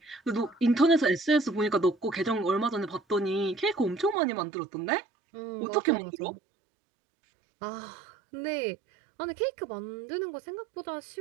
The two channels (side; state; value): left; drops out; at 4.2 s